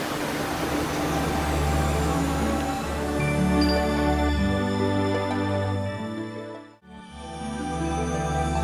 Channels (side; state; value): both; identical; correlation 1.00